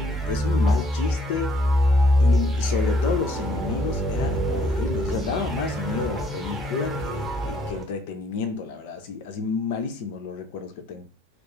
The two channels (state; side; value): normal; both; correlation 0.64